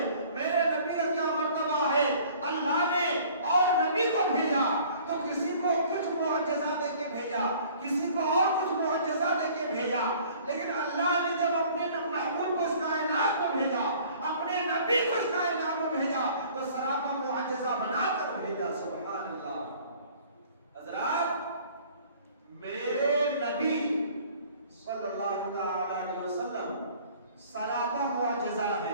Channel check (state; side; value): inverted; both; correlation -0.52